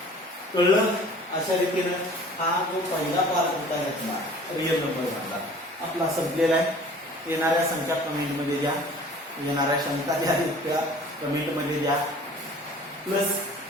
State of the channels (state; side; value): normal; both; correlation 0.48